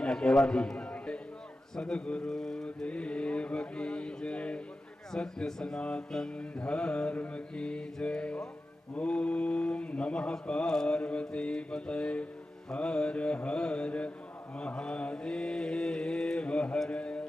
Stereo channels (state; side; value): normal; both; correlation 0.93